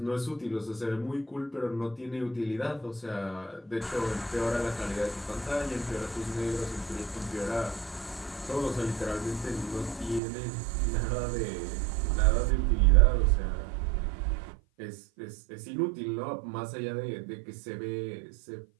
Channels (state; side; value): drops out; left; at 10.2 s